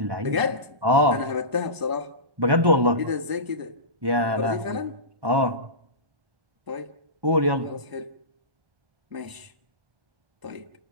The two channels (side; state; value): left; late; 1.0 ms